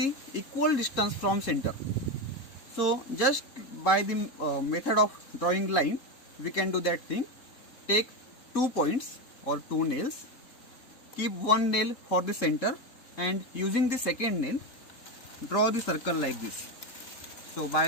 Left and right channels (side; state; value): right; late; 3.7 ms